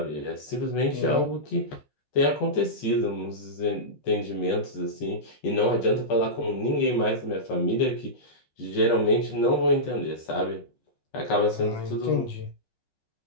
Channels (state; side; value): late; right; 15 ms